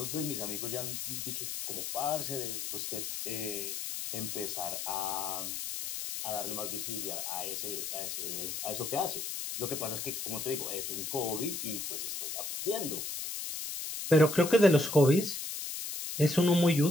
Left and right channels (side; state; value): left; noise; hiss, 5 dB below the sound